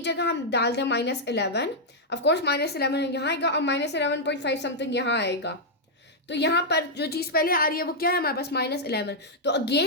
जगह हम डाल दें -11, ऑफकोर्स -11 यहाँ आएगा और -11.5 समथिंग यहाँ आएगा, तो यहाँ पर जो चीज़ पहले आ रही है वो क्या है हमारे पास, -11। तो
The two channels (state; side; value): normal; both; correlation -0.04